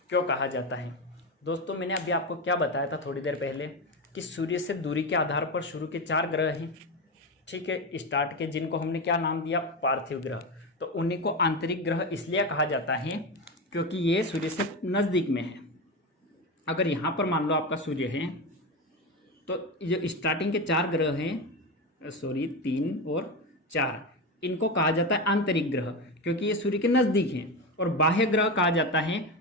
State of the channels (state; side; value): normal; both; correlation 0.17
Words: क्यों कहा जाता है। दोस्तों मैंने अभी आपको क्या बताया था थोड़ी देर पहले, कि सूर्य से दूरी के आधार पर शुरू के 4 ग्रह हैं, ठीक है, स्टार्ट के, जिनको हमने क्या नाम दिया, पार्थिव ग्रह। तो उन्हीं को आंतरिक ग्रह इसलिए कहा जाता है क्योंकि ये सूर्य से नजदीक में है। अगर यहाँ पर मान लो आपका सूर्य है, तो जो स्टार्टिंग के 4 ग्रह हैं सॉरी 3 और 4, इनको कहा जाता है आंतरिक ग्रह, क्योंकि ये सूर्य के नजदीक हैं। और बाह्य ग्रह कहा जाता है